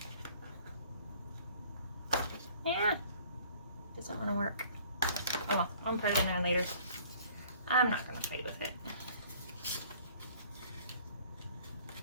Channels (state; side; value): inverted; both; correlation -0.54